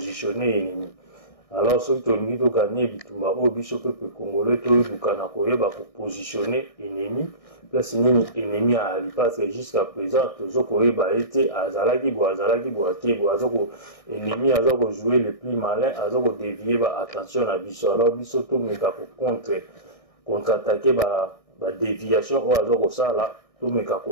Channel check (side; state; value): right; late; 1.6 ms